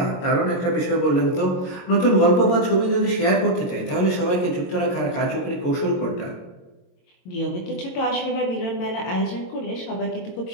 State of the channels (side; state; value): right; late; 22 ms